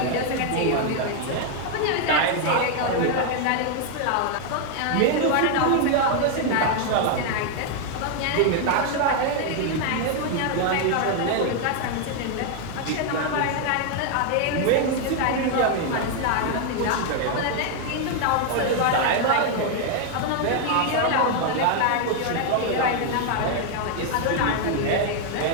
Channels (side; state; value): both; different; correlation 0.00